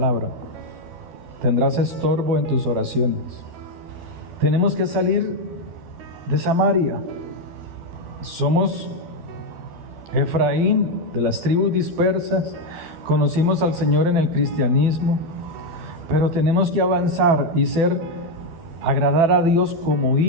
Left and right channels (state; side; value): late; left; 12 ms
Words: Tendrás estorbo en tus oraciones. Tenemos que salir de Samaria. Somos Efraín, de las tribus dispersas. Conocimos al Señor en el cristianismo, pero tenemos que avanzar y agradar a Dios como